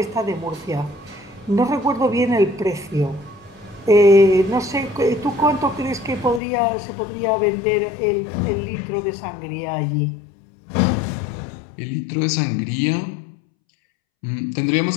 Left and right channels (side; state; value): right; drops out; at 6.4 s